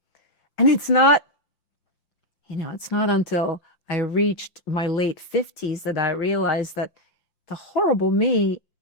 And it's not until I reached my late 50s that I realized that the horrible me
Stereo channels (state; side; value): late; right; 5.8 ms